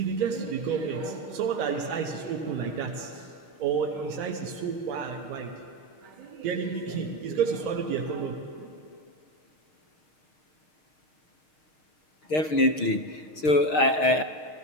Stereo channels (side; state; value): right; late; 6.5 ms